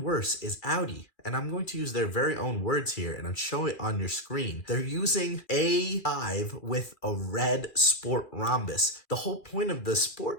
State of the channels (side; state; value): right; late; 2.3 ms